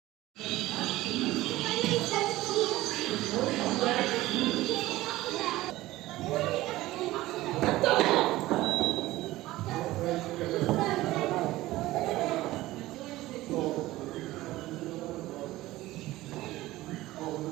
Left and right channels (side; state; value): left; quieter; 17.2 dB